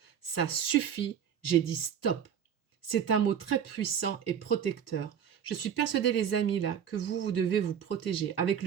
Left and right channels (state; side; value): quieter; left; 8.4 dB